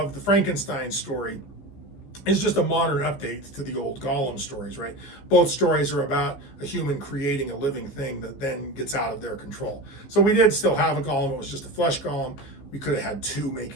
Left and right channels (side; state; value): right; late; 15 ms